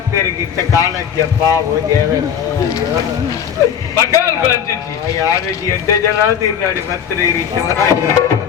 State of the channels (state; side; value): quieter; right; 8.3 dB